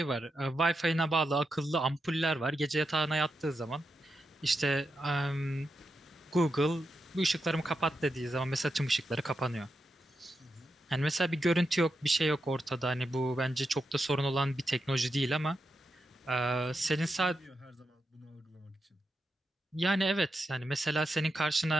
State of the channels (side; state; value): both; normal; correlation 0.86